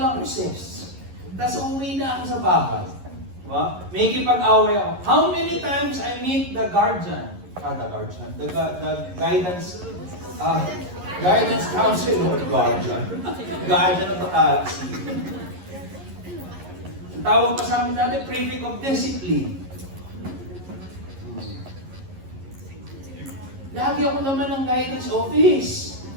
recess. Tapos umuwi na ako sa bahay. Diba? May kipag-away ako. How many times I meet the guardian? The guidance counselor, guardian of the galaxy. Ang tawag pa sa amin dati, prefect of discipline. Lagi ako naman ng guidance office.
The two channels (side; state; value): left; late; 11 ms